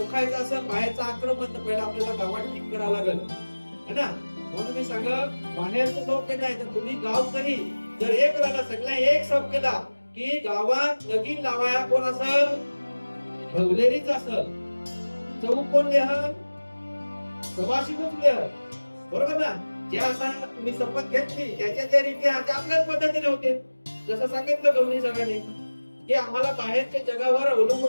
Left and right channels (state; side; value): inverted; both; correlation -1.00